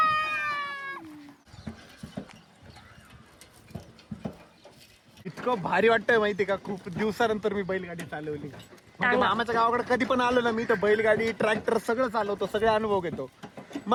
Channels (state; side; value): identical; both; correlation 1.00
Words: इतकं भारी वाटतंय माहिती का. खूप दिवसानंतर मी बैलगाडी चालवली. म्हणजे मामाच्या गावाकडे कधी पण आलो ना मी तर बैलगाडी ट्रॅक्टर सगळं चालवतो, सगळे अनुभव घेतो.